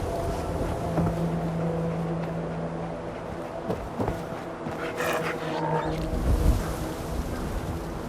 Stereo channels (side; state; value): both; identical; correlation 1.00